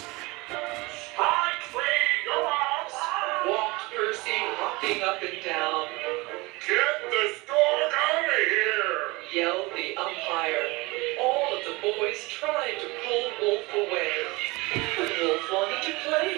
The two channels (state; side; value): quieter; left; 23.8 dB